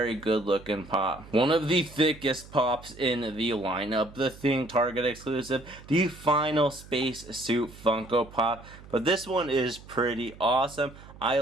good looking pop. One of the thickest pops in the lineup, the Thing Target exclusive, the Final Space Suit Funko Pop. But this one is pretty awesome. I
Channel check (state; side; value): noise; right; hum, 19 dB below the sound